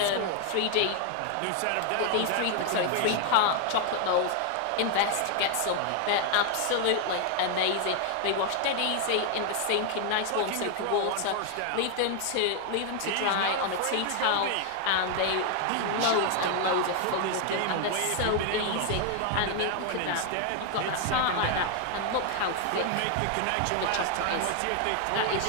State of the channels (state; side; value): different; both; correlation 0.00